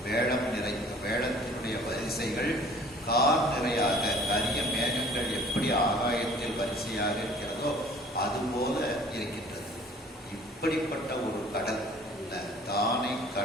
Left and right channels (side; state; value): both; normal; correlation 0.51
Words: வேடம் நிறை, வேடத்தினுடைய வரிசைகள் கார் நிறையாக, கரிய மேகங்கள் எப்படி ஆகாயத்தில் வரிசையாக இருக்கிறதோ அது போல இருக்கின்றது. இப்படிப்பட்ட ஒரு கடல், தானை